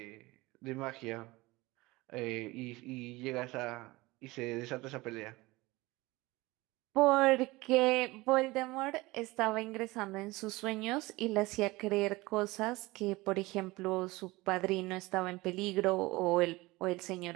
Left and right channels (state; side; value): quieter; left; 21.2 dB